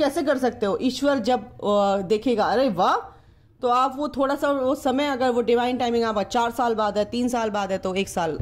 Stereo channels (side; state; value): both; identical; correlation 1.00